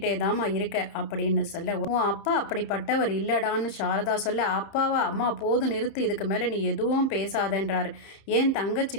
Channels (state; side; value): late; right; 31 ms